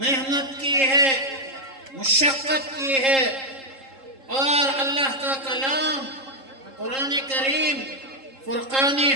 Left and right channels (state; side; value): late; left; 3.7 ms